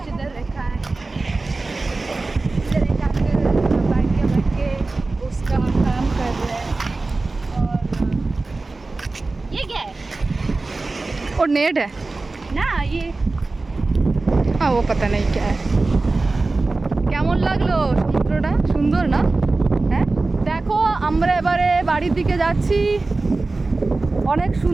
इधर रखा है इधर एक अंकल बैठ के उसका काम कर रहे हैं और ये क्या है और नेट है ना ये हाँ वो पता नहीं क्या है কেমন লাগলো সমুদ্রটা সুন্দর না হ্যাঁ দেখো আমরা এবারে বাড়ির দিকে যাচ্ছি অনেক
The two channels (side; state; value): left; quieter; 3.4 dB